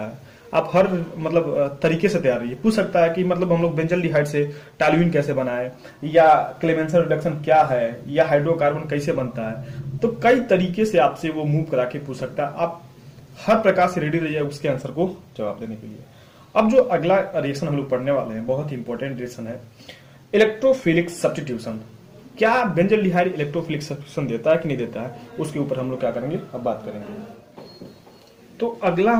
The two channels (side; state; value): both; identical; correlation 1.00